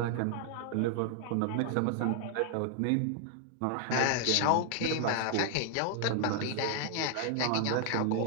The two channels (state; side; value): different; both; correlation 0.00